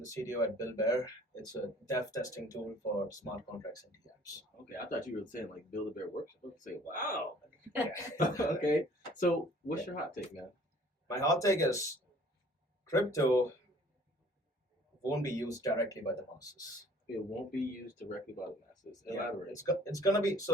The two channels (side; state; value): both; normal; correlation 0.53